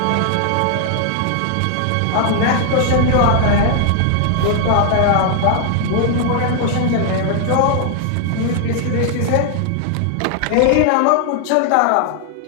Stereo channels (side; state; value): both; different; correlation 0.00